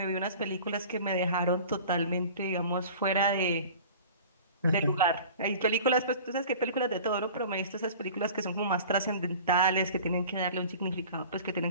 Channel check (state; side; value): inverted; both; correlation -0.42